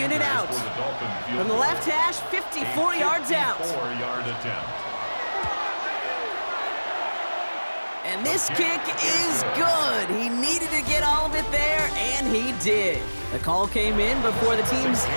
out. From the left hash, 54 yards out. 54-yard attempt. And this kick is good. He needed to get all of it there, and he did. The call came in before the teams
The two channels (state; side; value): inverted; both; correlation -1.00